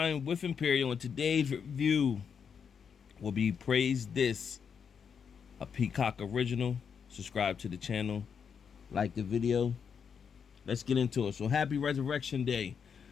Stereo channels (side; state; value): right; quieter; 6.8 dB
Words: with Imperial, and today's review will be Praise This, a Peacock original. Subscribe to the channel, like the video. Let's get into it. So, happy Resurrection Day.